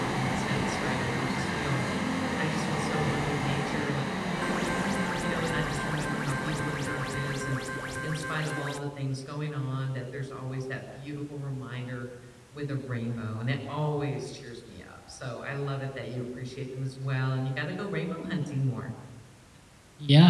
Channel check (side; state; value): both; identical; correlation 1.00